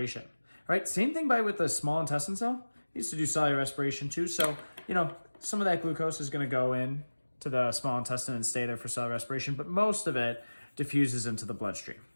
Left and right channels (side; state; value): both; inverted; correlation -1.00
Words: right? Same thing with the small intestine cell. It needs to do cellular respiration too. So, some of that glucose is going to go in to the small intestine and stay there for cellular respiration, but most of it diffuses into the bloodstream.